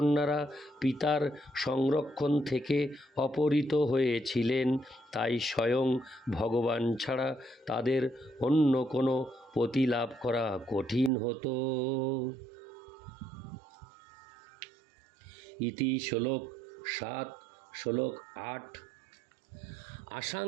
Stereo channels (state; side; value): drops out; left; at 11.1 s